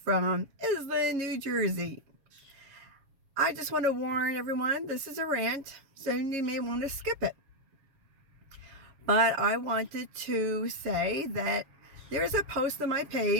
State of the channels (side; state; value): left; late; 7.3 ms